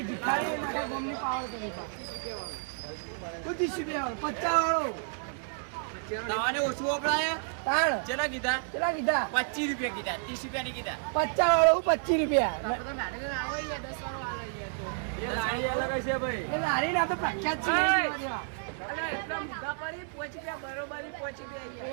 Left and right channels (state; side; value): silent; left; 57 dB below the other